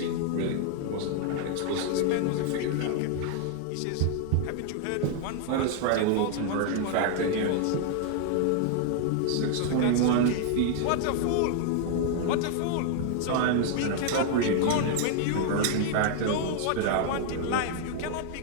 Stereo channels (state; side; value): different; both; correlation 0.00